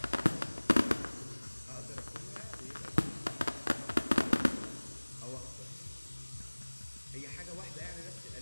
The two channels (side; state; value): both; inverted; correlation -1.00